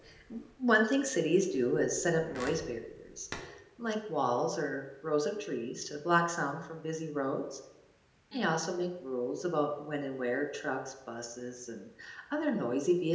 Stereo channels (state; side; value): identical; both; correlation 1.00